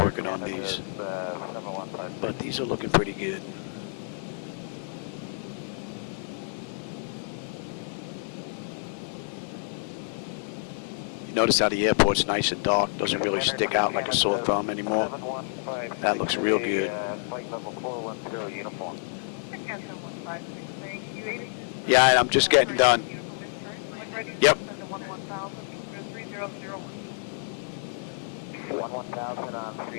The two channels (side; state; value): right; silent; digital silence